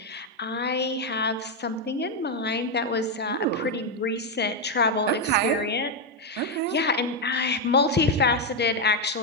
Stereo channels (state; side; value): normal; both; correlation 0.03